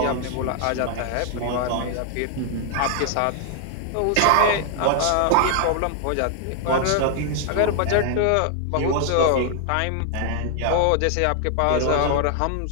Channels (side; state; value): both; different; correlation 0.00